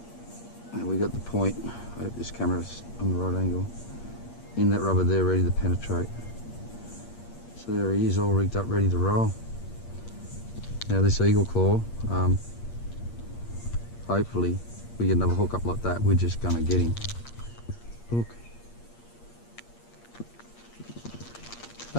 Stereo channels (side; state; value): right; late; 8.6 ms